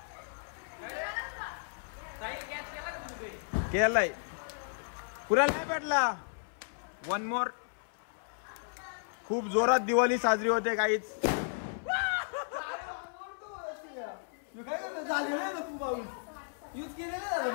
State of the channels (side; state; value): right; silent; 55 dB below the other